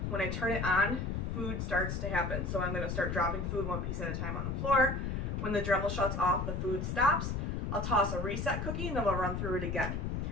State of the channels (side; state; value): left; noise; rumble, 2 dB below the sound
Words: when I turn it on, food starts to happen. So I'm going to start dropping food one piece at a time on the floor. When the Dremel shuts off, the food stops. I'll toss a reset cookie and then I'll run through it again.